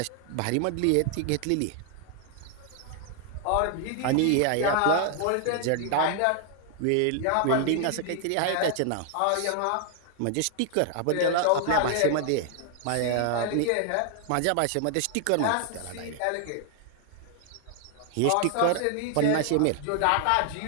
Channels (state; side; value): different; both; correlation 0.00